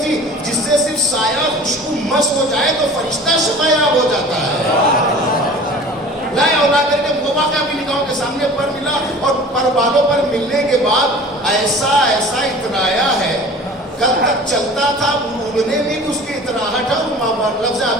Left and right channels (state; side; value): normal; both; correlation 0.42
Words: تھی جس سے صرف سایہ خوشبو مس ہو جائے تو فرشتہ شفایاب ہو جاتا ہے. لائے اور لا کر کے وہ واقعہ بھی نگاہوں کے سامنے پر ملا, اور پر بالوں پر ملنے کے بعد ایسا اترایا ہے. کل تک چلتا تھا, اڑنے میں بھی اس کی اتراہٹ ہے. لفظ